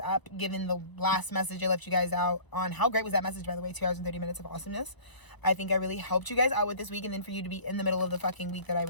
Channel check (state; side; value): late; right; 1.0 ms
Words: up, given the last message I left you guys out on. How great was that message, by the way? 2 hours and 30 minutes of awesomeness. I think I really helped you guys out with this week, and then for you to be in the middle of the fucking week that I